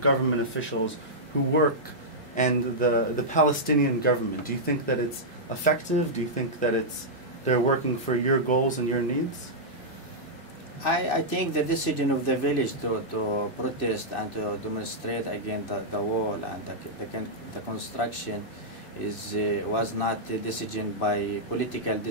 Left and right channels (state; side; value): normal; both; correlation -0.09